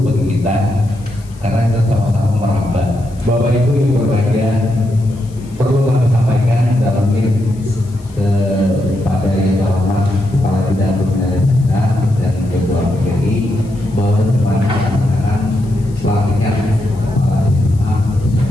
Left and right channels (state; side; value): noise; left; hiss, 27 dB below the sound